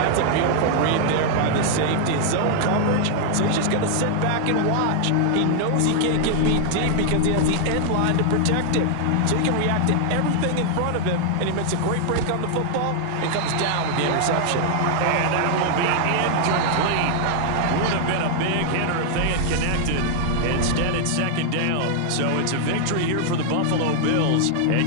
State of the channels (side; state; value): both; different; correlation 0.00